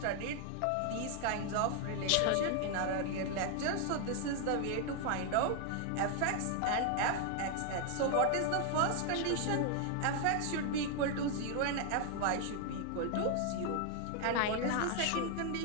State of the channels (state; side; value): different; both; correlation 0.00